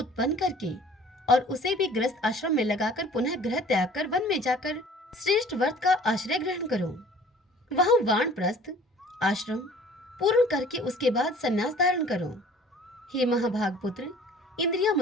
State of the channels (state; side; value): normal; both; correlation 0.50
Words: करके और उसे भी गृहस्थ आश्रम में लगाकर पुनः गृह त्याग कर वन में जाकर श्रेष्ठ व्रत का आश्रय ग्रहण करो। वहां वानप्रस्थ आश्रम पूर्ण करके उसके बाद संन्यास धारण करो। हे महाभाग पुत्र, इंद्रियां